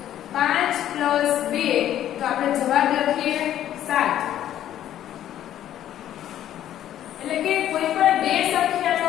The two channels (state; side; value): quieter; right; 11.7 dB